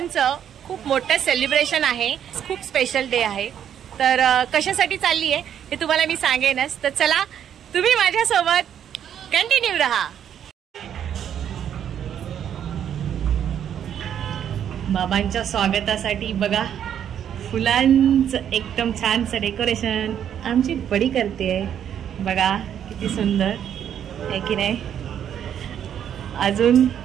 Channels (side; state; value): left; quieter; 9.4 dB